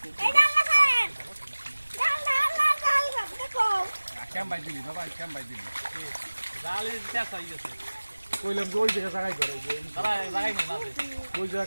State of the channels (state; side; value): inverted; both; correlation -1.00